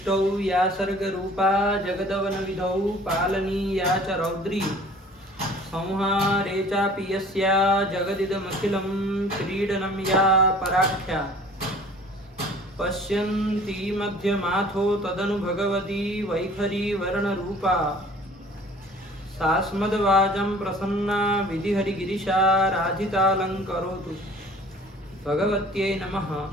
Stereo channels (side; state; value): both; normal; correlation 0.49